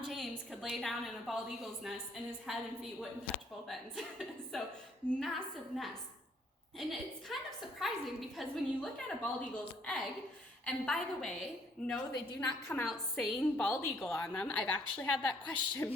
James could lay down in a bald eagle's nest and his head and feet wouldn't touch both ends. So massive nest. And it's kind of surprising because when you look at a bald eagle's egg, and by the way, no, they do not come out saying bald eagle on them. I've actually had that question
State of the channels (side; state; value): both; normal; correlation 0.65